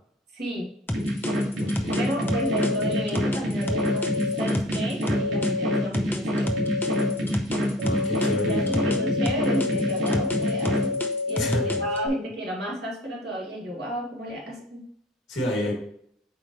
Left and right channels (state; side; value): normal; both; correlation 0.41